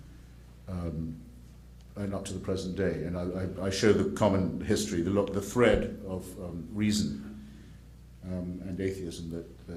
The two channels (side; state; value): both; identical; correlation 1.00